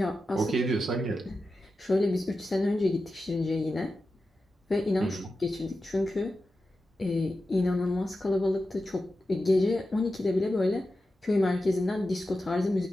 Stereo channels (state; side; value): normal; both; correlation 0.92